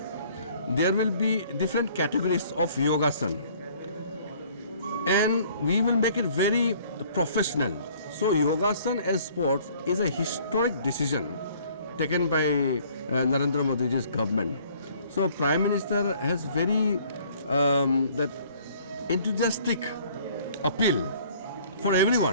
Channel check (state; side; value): inverted; both; correlation -0.56